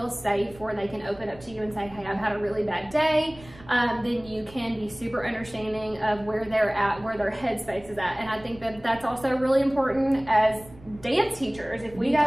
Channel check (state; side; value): noise; right; rumble, 21 dB below the sound